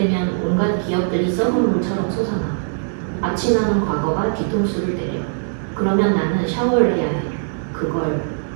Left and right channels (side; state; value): left; silent; 65 dB below the other